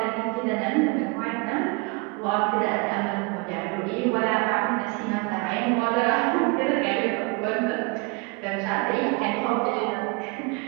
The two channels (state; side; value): quieter; left; 29.6 dB